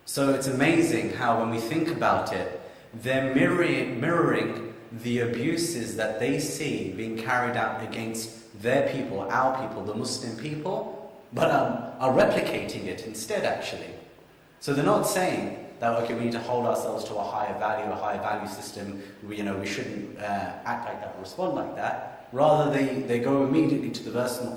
So it's amazing how when we think about it, they're mirroring the abuses that they see being carried out against their people, our people, the Muslim people, but are replicating it instead, actually. So they're not saying that, okay, we need to hold ourselves to a higher value system, we shouldn't act like that or respond like that. Rather, they go immediately to the verse in the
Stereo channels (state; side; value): identical; both; correlation 1.00